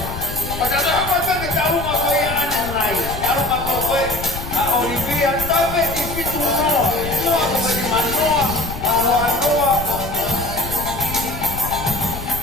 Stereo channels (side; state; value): left; noise; rumble, 9 dB below the sound